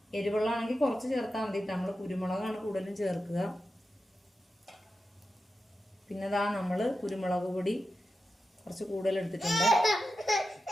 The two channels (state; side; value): normal; both; correlation 0.91